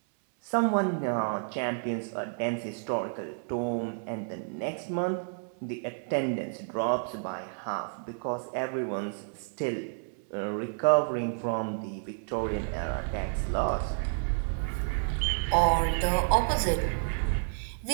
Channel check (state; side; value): silent; left; 58 dB below the other